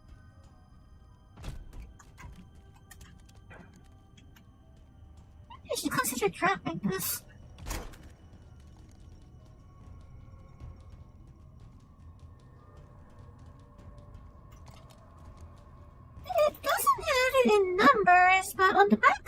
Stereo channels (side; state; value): both; identical; correlation 1.00